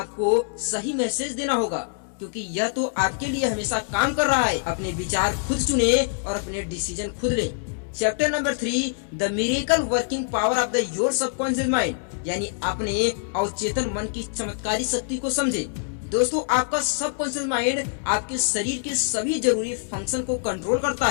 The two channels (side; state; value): right; silent; digital silence